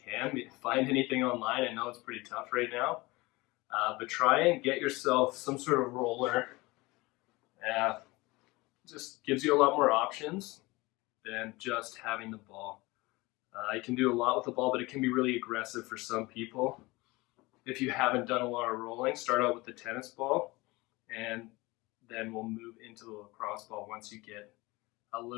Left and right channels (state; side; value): quieter; right; 22.4 dB